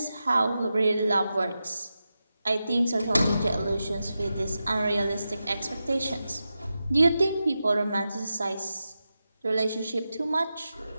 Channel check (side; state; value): both; inverted; correlation -0.91